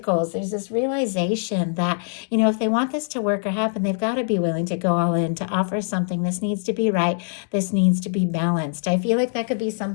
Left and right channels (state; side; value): silent; right; digital silence